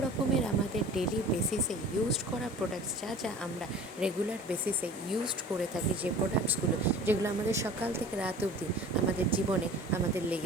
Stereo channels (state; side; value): normal; both; correlation 0.43